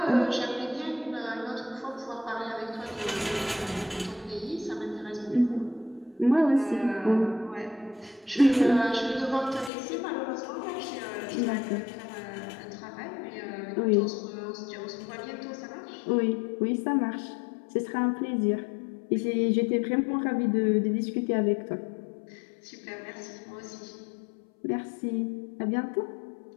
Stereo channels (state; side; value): drops out; right; at 9.7 s